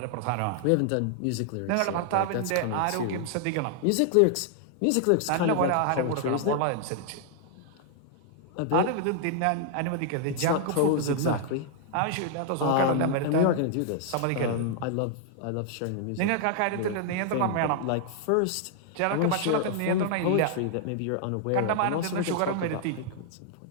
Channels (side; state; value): both; different; correlation 0.00